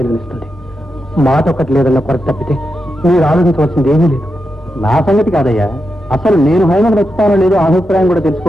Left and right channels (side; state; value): both; normal; correlation 0.87